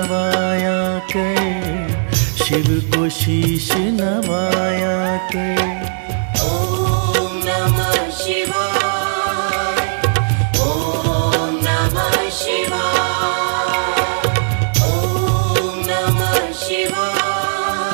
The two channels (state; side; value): silent; left; digital silence